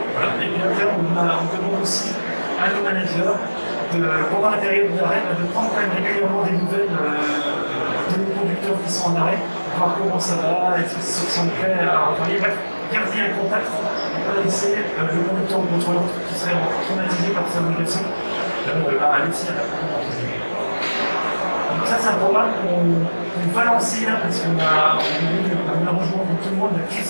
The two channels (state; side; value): inverted; both; correlation -1.00